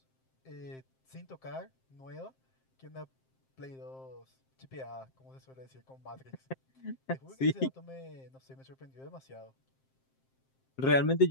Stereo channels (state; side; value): late; right; 7.6 ms